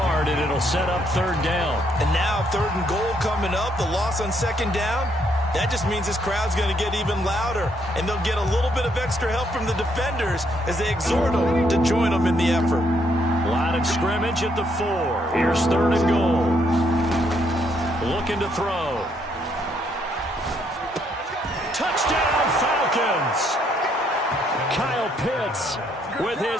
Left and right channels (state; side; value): normal; both; correlation 0.72